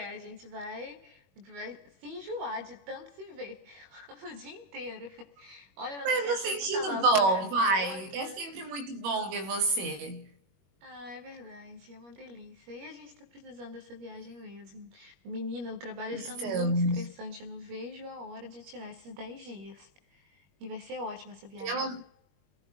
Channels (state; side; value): late; left; 21 ms